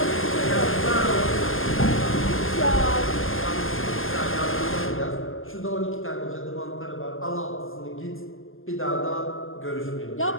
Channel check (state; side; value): late; right; 0.59 ms